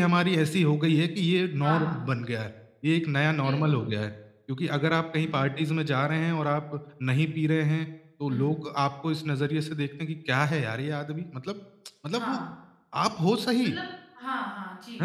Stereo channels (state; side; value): identical; both; correlation 1.00